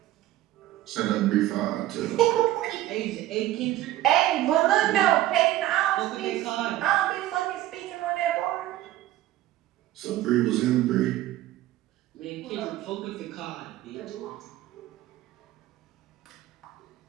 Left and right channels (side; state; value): left; quieter; 14.7 dB